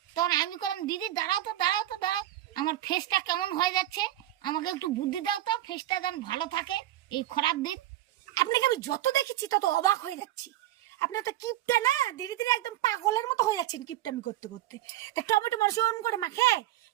তখন আমি করলাম দিদি দাঁড়াও তো দাঁড়াও তো দাঁড়াও, আমার ফেসটা কেমন হয়ে যাচ্ছে, আমাকে একটু বুদ্ধি দাও তো, ফেসটা যেন ভালো থাকে এই খারাপ দিন। আপনাকে আমি যত দেখেছি তত অবাক হয়ে যাচ্ছি। আপনার তো কিপটা না, ধীরে ধীরে একদম পাগলের মতো হয়ে যাচ্ছেন কিপটামি করতে করতে। তা টমেটো মানুষ ওরম করে মাখে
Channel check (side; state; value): left; quieter; 14.3 dB